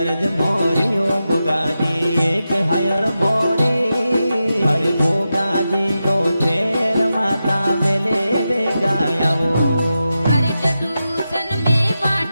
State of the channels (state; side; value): inverted; both; correlation -0.90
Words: मोरियो गोगाजी एक हयर मोरी अरे गोगाजी तो तेर माता बेले वे गायावो अरे टटूसन में